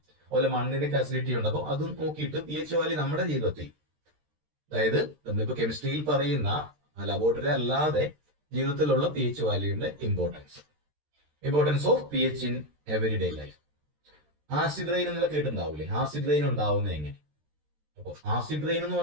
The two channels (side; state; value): left; late; 13 ms